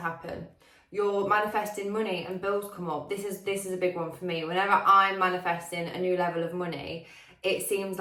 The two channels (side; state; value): both; identical; correlation 1.00